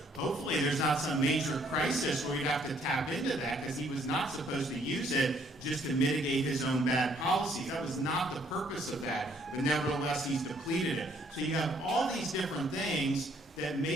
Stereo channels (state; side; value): normal; both; correlation 0.65